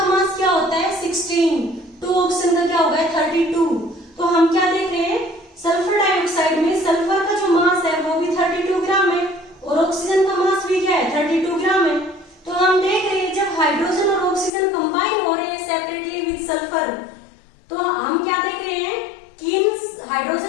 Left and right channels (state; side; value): drops out; right; at 14.5 s